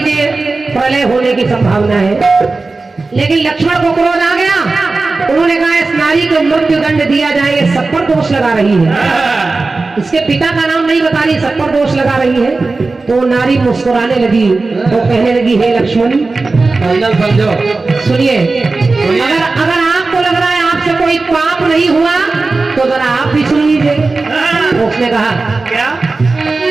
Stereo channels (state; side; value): quieter; left; 3.7 dB